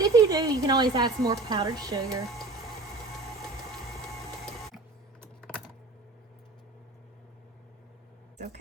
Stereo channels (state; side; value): quieter; left; 3.1 dB